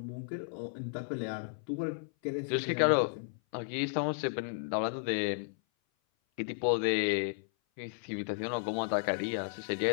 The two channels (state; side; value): silent; right; 55 dB below the other